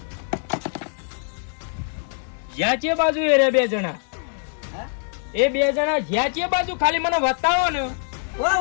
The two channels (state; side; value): silent; right; digital silence